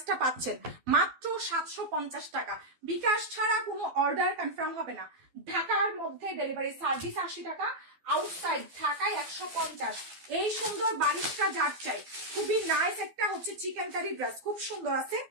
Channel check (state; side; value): late; left; 12 ms